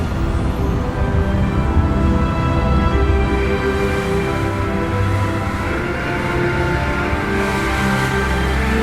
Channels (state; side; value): identical; both; correlation 1.00